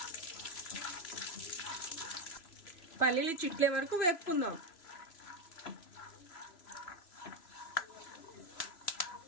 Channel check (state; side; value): late; right; 3.0 ms